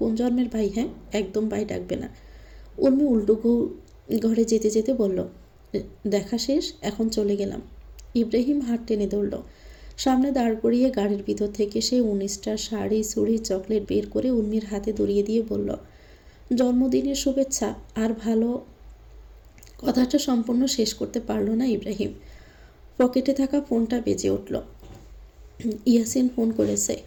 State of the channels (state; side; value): identical; both; correlation 1.00